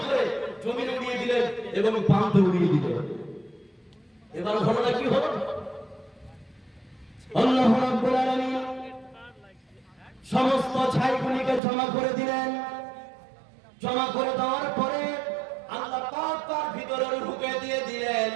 করে জমিনে উড়িয়ে দিলেন এবং পানিতে উড়িয়ে দিলেন। এবার ঘটনা কি হলো? আল্লাহ রাব্বুল আলামিন সমস্ত ছাইগুলিকে জমা করে দিলেন। জমা করে দেওয়ার পরে আল্লাহ পাক তার ভিতরে রূহকে দিয়ে দিলেন।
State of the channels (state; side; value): drops out; left; at 11.6 s